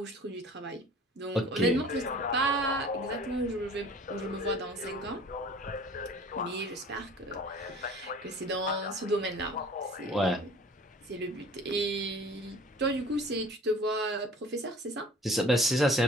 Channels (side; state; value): both; normal; correlation 0.47